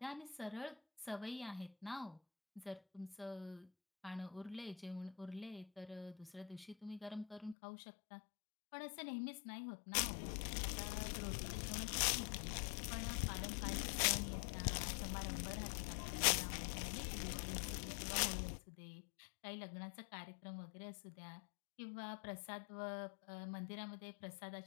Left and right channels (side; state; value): right; drops out; at 7.6 s